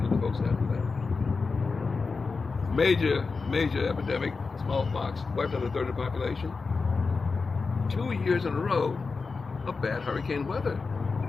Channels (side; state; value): right; quieter; 4.5 dB